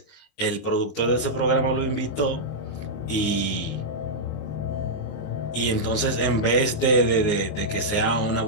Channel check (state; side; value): late; right; 19 ms